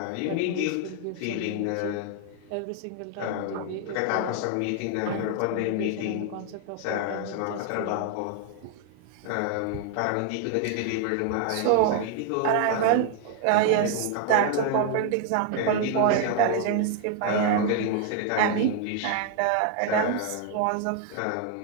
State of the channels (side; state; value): both; different; correlation 0.00